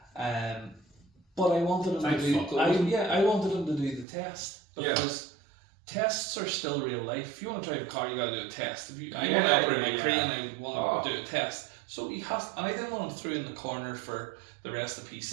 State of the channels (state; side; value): drops out; left; at 4.0 s